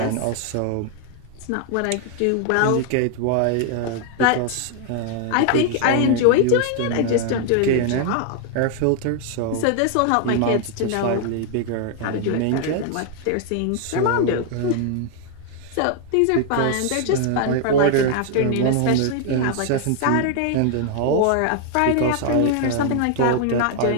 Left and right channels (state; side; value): different; both; correlation 0.00